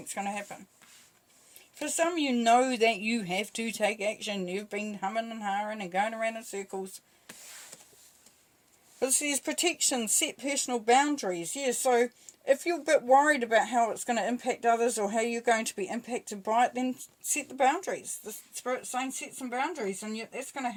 going to happen. For some, you know that you have to take action. You've been humming and hawing and going around in circles. But it says protection, set personal boundaries. Yeah, so if you're a bit worried about how it's going to impact others or how you're going to be impacted by it, then set the boundaries. The Spirit's saying set some boundaries, and that's going to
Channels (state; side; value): identical; both; correlation 1.00